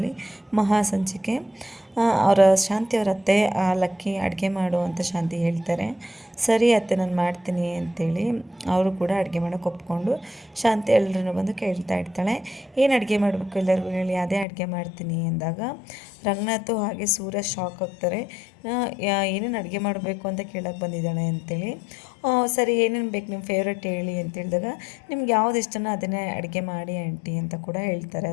ಮಹಾಸಂಚಿಕೆ. ಅವರ ಶಾಂತಿ ಅವರ ಅತ್ತೆ ಲಕ್ಕಿ ಅಡುಗೆ ಮಾಡು ಅಂತ ಶಾಂತಿ ಹೇಳ್ತಾರೆ. ಸರಿ ಅತ್ತೆ ನಾನು ಮಾಡ್ತೀನಿ ಅಂತೇಳಿ ಅವರು ಕೂಡ ಅಡುಗೆ ಮಾಡೋಕ್ಕೆ ಒಪ್ಕೊಂಡು ಶಾಂತಿ ಎಲ್ಲರೂ ಬಂದು ಕೇಳ್ತಾ ಇರ್ತಾಳೆ, ಏನು ಅಡುಗೆ ಮಾಡಬೇಕು ಎಲ್ಲರಿಗೂ ಹೇಳಿ, ಅದೇ ಅಡುಗೆ ಮಾಡ್ತೀನಿ ಅಂದಾಗ ರಂಗನಾಥು ಹಾಗೆ ಸೂರ್ಯ ಶಾಕ್ ಆಗ್ತಾರೆ. ಏನೇನು ಅಡುಗೆ ಮಾಡಬೇಕು ಅಂತ ಕೇಳೋಕ್ಕೆ ಬಂದಿದ್ದಾಳೆ ಅಂತೇಳಿ. ಸರಿ ಏನೇನು ಬೇಕು ನಿಮ್ಮ ಫೇವ್ರೆಟ್ ಹೇಳಿ ಅಂತ ಹೇಳಿದಾಗ, ನಿಮ್ಗೆ ಯಾವ್ದು ಇಷ್ಟನೋ ಅದನ್ನೇ ಅಡುಗೆ ಮಾಡಿ ಆಂಟಿ ಅಂತ ಕೂಡ ಹೇಳ್ತಾರೆ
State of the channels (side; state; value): right; drops out; at 14.5 s